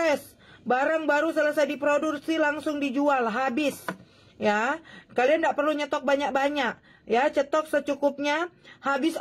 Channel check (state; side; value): identical; both; correlation 1.00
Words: barang baru selesai diproduksi langsung dijual habis. Ya, kalian tidak perlu nyetok banyak-banyak. Ya, cetok secukupnya, habis